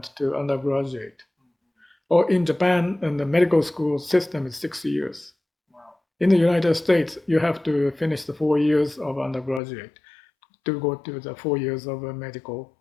to undergraduate. Or in Japan, and the medical school system is 6 years. Wow. In the United States, you have to finish the 4 years of undergraduate to go to the 4 years of medical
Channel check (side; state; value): right; drops out; at 9.6 s